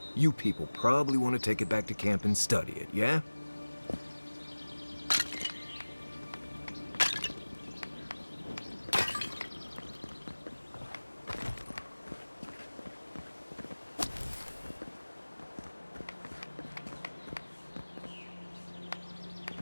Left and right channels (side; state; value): both; inverted; correlation -1.00